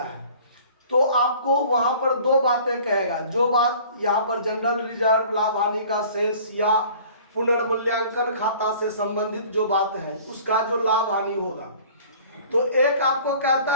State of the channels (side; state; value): both; inverted; correlation -0.48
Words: है, तो आपको वहां पर दो बातें कहेगा। जो बात यहाँ पर जनरल रिजर्व, लाभ हानि का शेष या पुनर्मूल्यांकन खाता से संबंधित जो बात है उसका जो लाभ हानि होगा, तो एक आपको